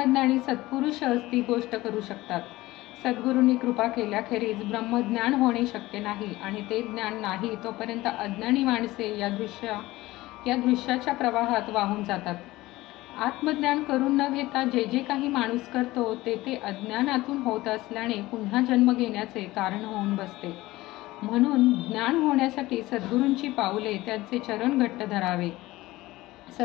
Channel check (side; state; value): right; quieter; 18.4 dB